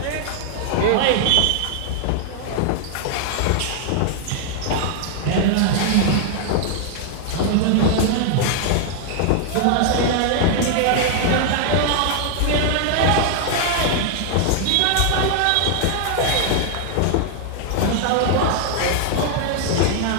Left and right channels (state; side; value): different; both; correlation 0.00